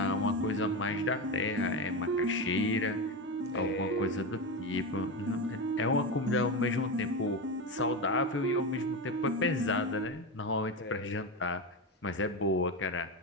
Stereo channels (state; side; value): normal; both; correlation 0.17